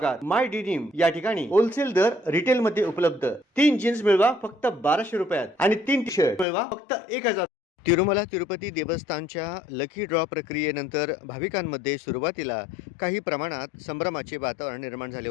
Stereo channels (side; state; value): right; drops out; at 6.5 s